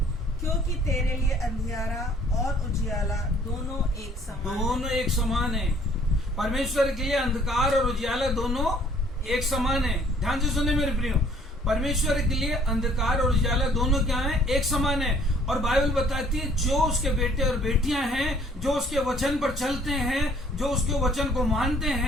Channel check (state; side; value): normal; both; correlation 0.59